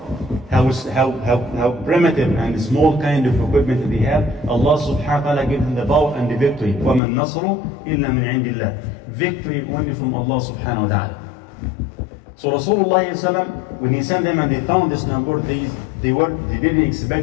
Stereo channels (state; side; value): drops out; right; at 7.0 s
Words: how primitive and small kind of equipment they have, Allah subhanahu wa ta'ala gives them the power and the victory. وَمَا النَّصْرُ إِلَّا مِنْ عِنْدِ اللَّهِ. Victory only from Allah subhanahu wa ta'ala. So Rasulullah when he sent them and they found this number, they didn't